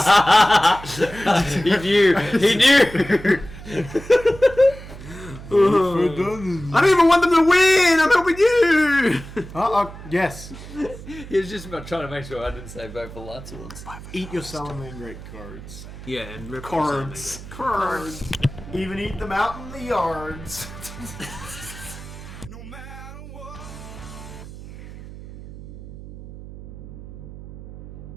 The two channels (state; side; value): noise; right; hum, 14 dB below the sound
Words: He knew. I don't even want them to win. I'm helping you. Yes. He was just about trying to make sure I didn't say vote for Lights Ones. Eat your Salamander cards. Yeah, and rip Cards. Even eat them out in the yards.